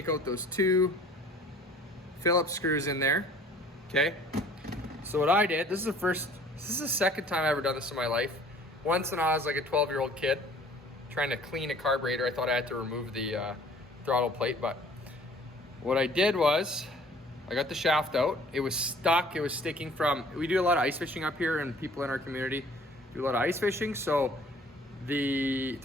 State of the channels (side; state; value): both; normal; correlation 0.53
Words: out those two Phillips screws in there. Okay. So what I did, this is the second time I've ever done this in my life. Once when I was like a 12-year-old kid trying to clean a carburetor, I thought I had to remove the throttle plate, but what I did was I got the shaft out. It was stuck. It was sticking from, we do a lot of ice fishing up here, and people in our community do a lot of ice fishing. So the